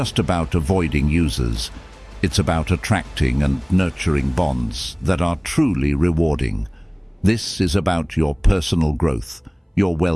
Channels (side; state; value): both; identical; correlation 1.00